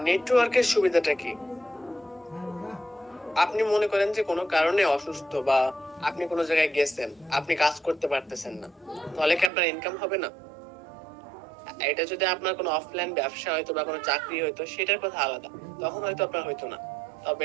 নেটওয়ার্কের সুবিধাটা কি? আপনি মনে করেন যে কোনো কারণে অসুস্থ বা আপনি কোনো জায়গায় গেছেন, আপনি কাজ করতে পারতেছেন না, তাহলে কি আপনার ইনকাম হবে না? এটা যদি আপনার কোনো অফলাইন ব্যবসা হয়তো বা কোনো চাকরি হয়তো সেটার কথা আলাদা, তখন হয়তো আপনার হয়তো না।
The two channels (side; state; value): left; drops out; at 9.5 s